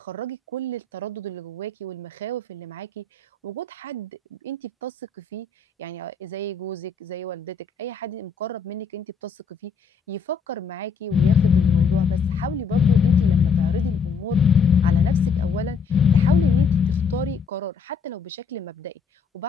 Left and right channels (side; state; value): right; quieter; 5.4 dB